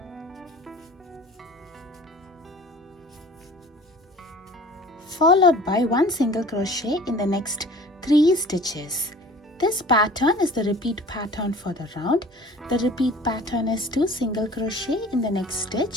followed by 1 single crochet in the next 3 stitches. This pattern is the repeat pattern for the round. The repeat pattern is 2 single crochet in the next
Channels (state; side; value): normal; both; correlation 0.45